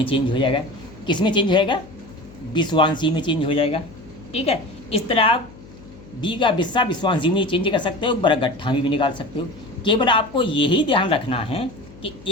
चेंज हो जाएगा। किस में चेंज हो जाएगा? विश्वांसी में चेंज हो जाएगा, ठीक है। इस तरह आप बीघा बिस्सा विश्वांसी में चेंज कर सकते हो, बरगट्ठा में भी निकाल सकते हो। केवल आपको यही ध्यान रखना है कि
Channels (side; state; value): left; noise; hum, 20 dB below the sound